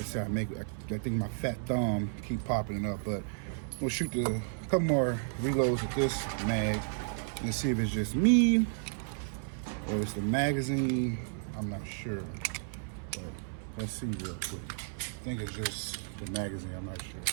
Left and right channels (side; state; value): left; silent; 56 dB below the other